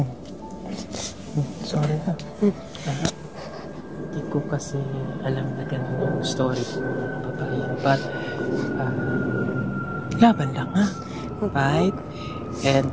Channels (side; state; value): both; identical; correlation 1.00